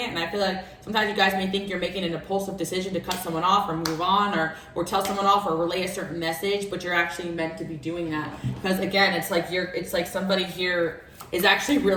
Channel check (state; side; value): identical; both; correlation 1.00